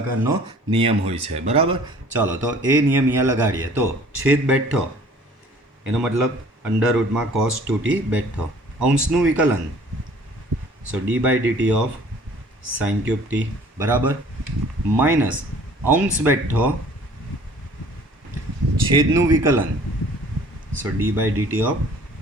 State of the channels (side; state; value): both; normal; correlation 0.52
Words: નિયમ હોય છે. બરાબર, ચાલો તો એ નિયમ અહીંયા લગાડીએ. તો છેદ બેઠો એનો મતલબ અંડર રૂટમાં કોસ 2t બેઠો. અંશનું વિકલન, so d by dt of sine cube t. બરાબર, માઇનસ અંશ બેઠો છેદનું વિકલન, so d by dt of